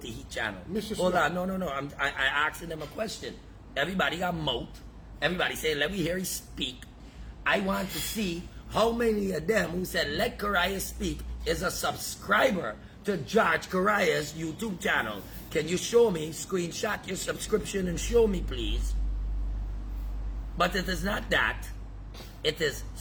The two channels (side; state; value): both; identical; correlation 1.00